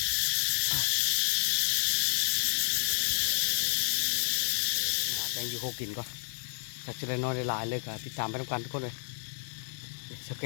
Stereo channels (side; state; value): right; silent; 58 dB below the other